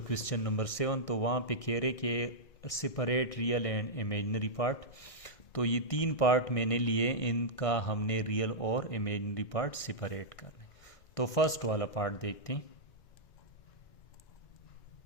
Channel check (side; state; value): right; late; 1.6 ms